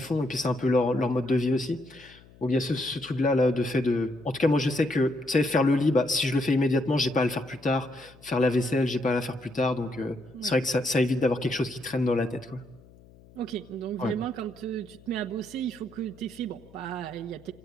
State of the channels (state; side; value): noise; left; hum, 24 dB below the sound